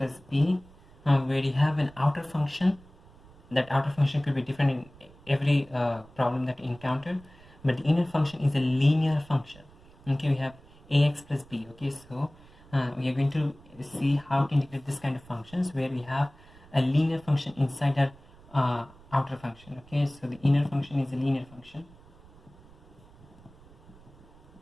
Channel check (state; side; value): noise; right; rumble, 24 dB below the sound